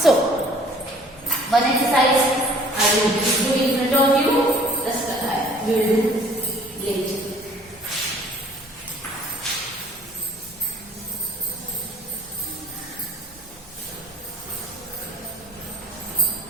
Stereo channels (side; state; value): both; normal; correlation 0.54